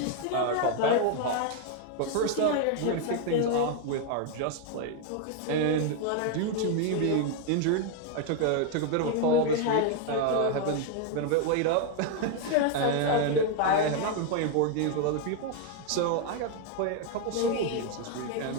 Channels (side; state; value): both; different; correlation 0.00